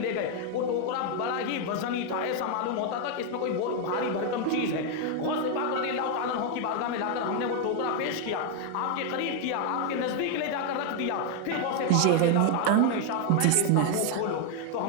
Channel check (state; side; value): different; both; correlation 0.01